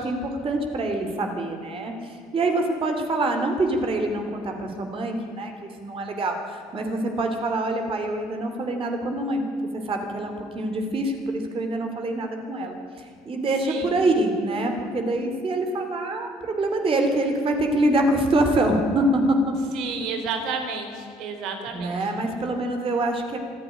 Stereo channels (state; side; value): normal; both; correlation 0.63